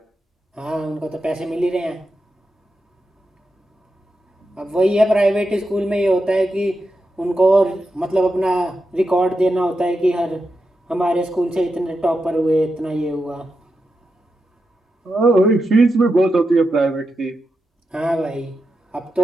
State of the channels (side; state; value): both; normal; correlation 0.88